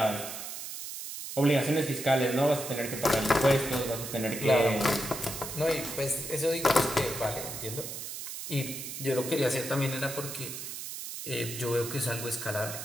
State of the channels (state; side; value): noise; right; hiss, 8 dB below the sound